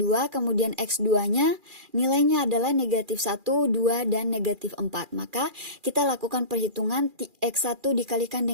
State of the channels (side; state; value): left; late; 2.4 ms